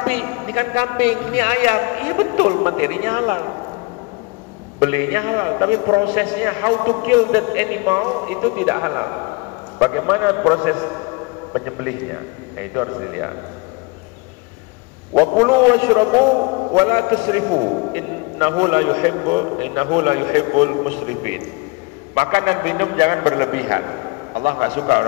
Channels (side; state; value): right; quieter; 27.8 dB